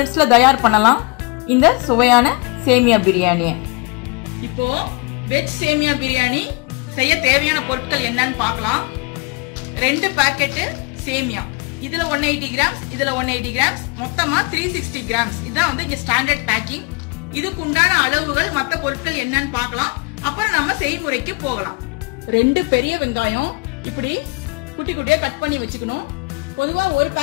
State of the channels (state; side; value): quieter; right; 29.8 dB